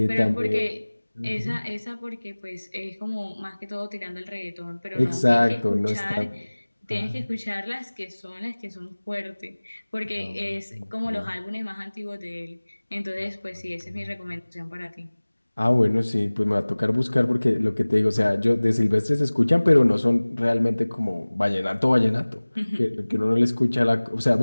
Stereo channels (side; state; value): both; inverted; correlation -1.00